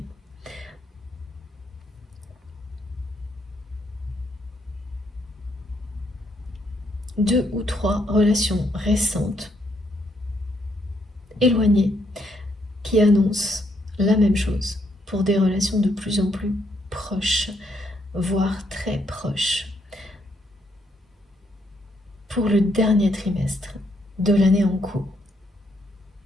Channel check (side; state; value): both; normal; correlation 0.74